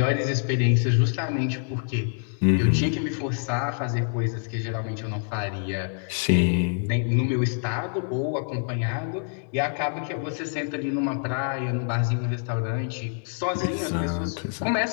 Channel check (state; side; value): silent; right; digital silence